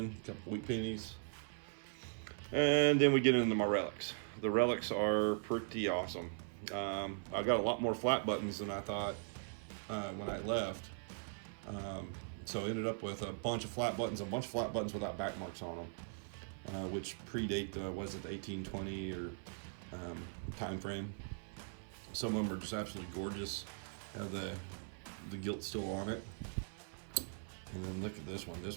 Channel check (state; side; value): silent; left; 51 dB below the other